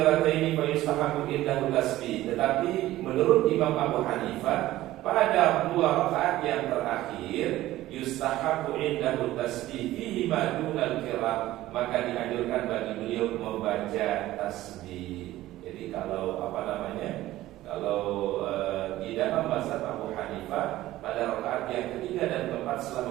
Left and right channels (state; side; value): quieter; left; 15.6 dB